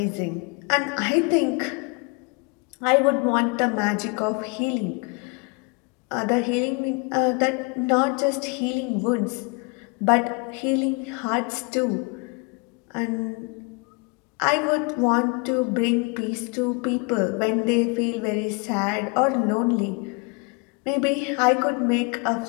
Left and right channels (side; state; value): right; quieter; 30.5 dB